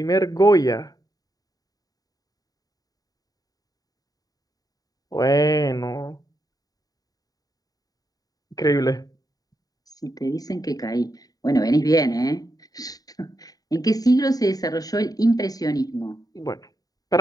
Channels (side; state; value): right; late; 0.18 ms